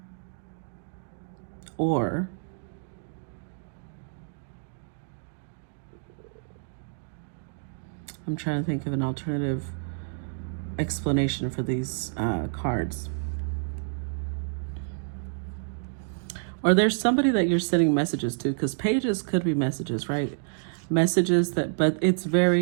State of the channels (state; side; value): silent; left; digital silence